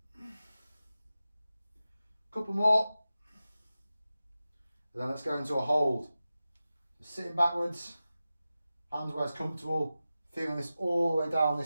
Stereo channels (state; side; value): inverted; both; correlation -0.94